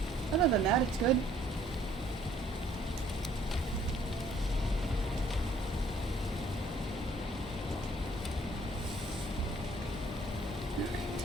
Other than that, it's good.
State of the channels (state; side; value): normal; both; correlation 0.61